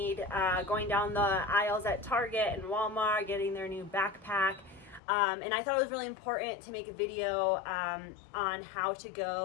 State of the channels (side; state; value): right; drops out; at 5.0 s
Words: going down the aisles at Target and Walmart, getting their new backpack. And I thought it was really important to make a video on how to